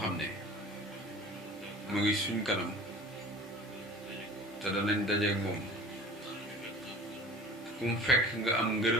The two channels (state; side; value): normal; both; correlation 0.43